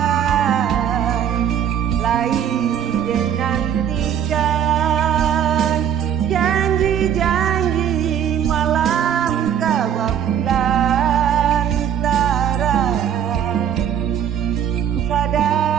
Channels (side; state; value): left; quieter; 9.1 dB